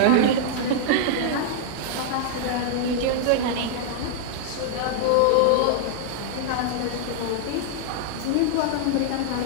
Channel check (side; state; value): both; different; correlation -0.01